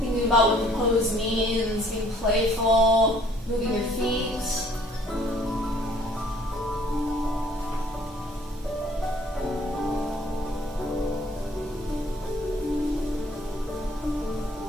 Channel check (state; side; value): normal; both; correlation 0.58